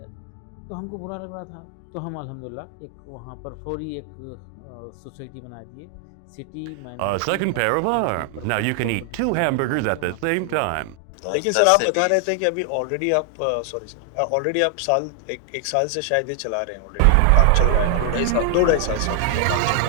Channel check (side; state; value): both; different; correlation 0.00